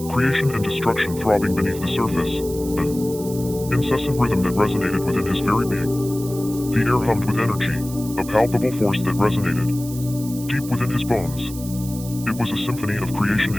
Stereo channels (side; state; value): right; noise; hiss, 14 dB below the sound